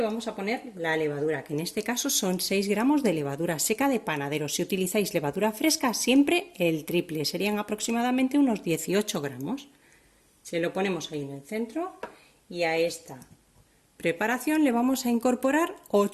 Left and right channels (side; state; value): both; identical; correlation 1.00